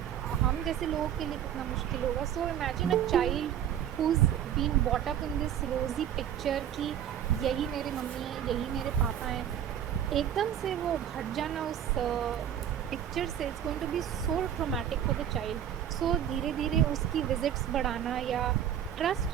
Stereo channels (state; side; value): quieter; left; 9.9 dB